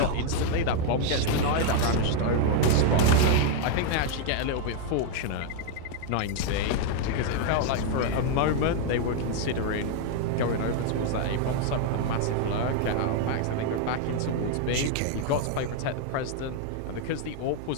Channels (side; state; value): both; different; correlation 0.01